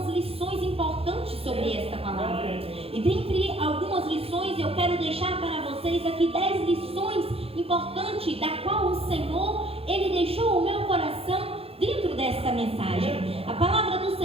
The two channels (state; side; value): late; left; 0.28 ms